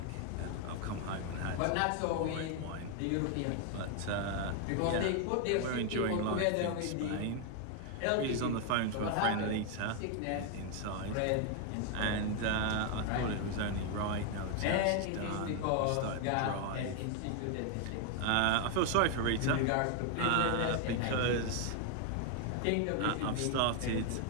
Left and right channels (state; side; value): different; both; correlation 0.00